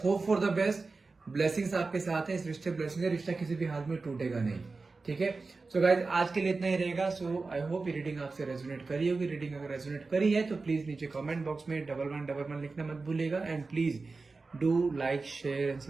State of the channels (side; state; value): left; quieter; 3.9 dB